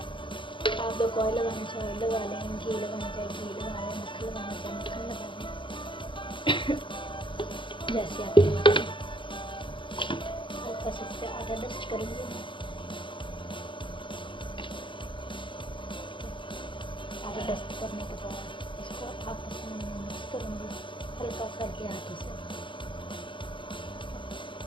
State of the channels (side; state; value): right; late; 0.24 ms